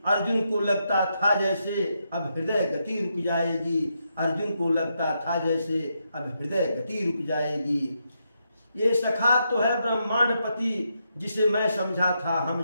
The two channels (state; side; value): inverted; both; correlation -0.81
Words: अर्जुन को लगता था जैसे अब हृदय गति रुक जाएगी, अर्जुन को लगता था जैसे अब हृदय गति रुक जाएगी। ये सखा तो है ब्रह्मांडपति जिसे मैं समझा था